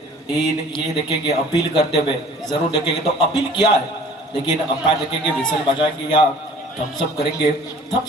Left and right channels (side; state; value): both; normal; correlation 0.49